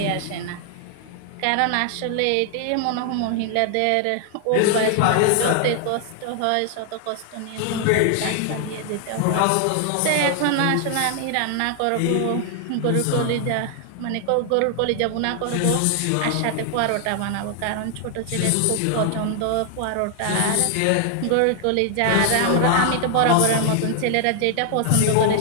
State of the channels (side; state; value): both; different; correlation 0.00